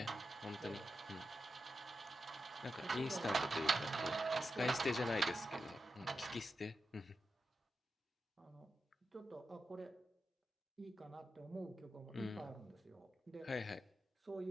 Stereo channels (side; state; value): both; normal; correlation 0.89